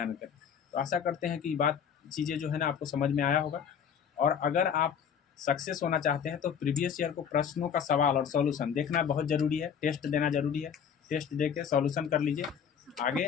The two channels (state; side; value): quieter; right; 7.6 dB